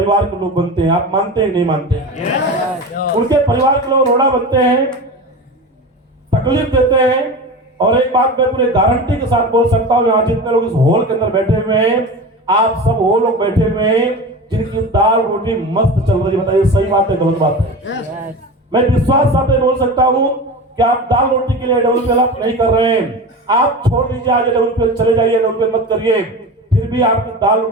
के लोग बनते हैं। आप मानते हैं नहीं मानते हैं? उनके परिवार के लोग रोड़ा बनते हैं, तकलीफ देते हैं। और एक बात मैं पूरे गारंटी के साथ बोल सकता हूँ, यहाँ जितने लोग इस हॉल के अंदर बैठे हुए हैं, आप सब वो लोग बैठे हुए हैं जिनकी दाल रोटी मस्त चल रही है। बताइए सही बात है गलत बात है? मैं विश्वास साथ बोल सकता हूँ कि आप दाल रोटी के लिए डेवलप नहीं कर रहे हैं। आप छोड़ दीजिए, आज डेवलप चले जाइए, डेवलप मत करिए, फिर भी आपकी दाल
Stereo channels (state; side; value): normal; both; correlation 0.29